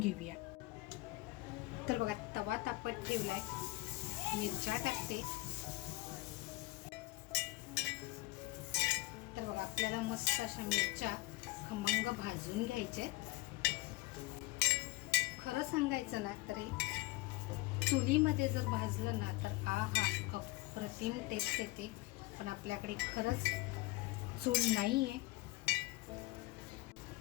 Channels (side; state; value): right; quieter; 21.1 dB